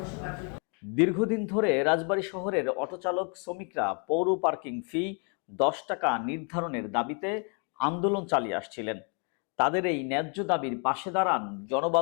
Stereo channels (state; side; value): quieter; right; 38.5 dB